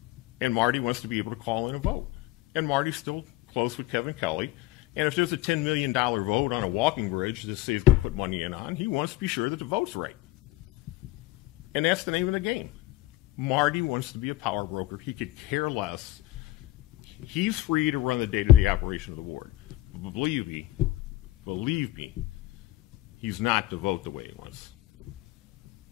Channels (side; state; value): right; quieter; 17.2 dB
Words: And Marty wants to be able to call in a vote. And Marty's still close with Kevin Kelly. And if there's a $10 million vote on a walking bridge that says to put money in on, he wants to be sure that the vote's right. And that's the name of the game. Marty wants to be a power broker. He could care less. He's free to run the day-to-day operation of the ward. But believe me, he's not to vote the way he wants.